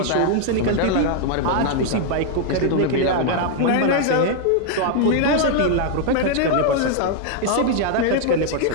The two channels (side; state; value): both; different; correlation 0.00